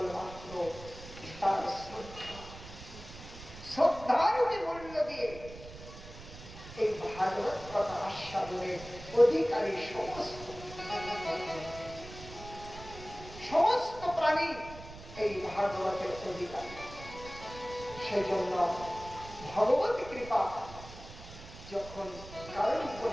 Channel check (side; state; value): right; noise; rumble, 15 dB below the sound